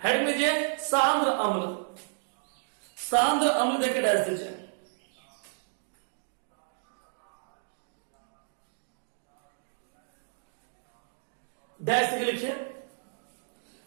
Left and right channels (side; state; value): left; silent; digital silence